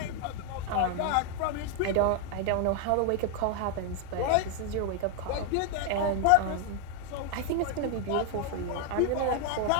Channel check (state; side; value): different; both; correlation 0.00